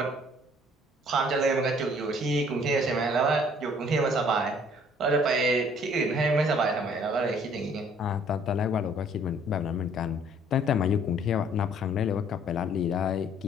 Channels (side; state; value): both; normal; correlation 0.58